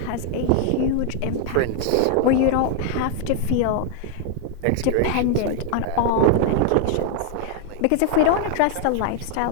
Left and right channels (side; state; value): both; different; correlation 0.00